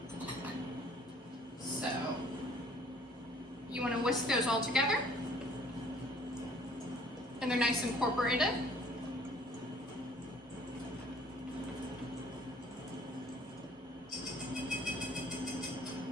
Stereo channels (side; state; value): both; normal; correlation 0.57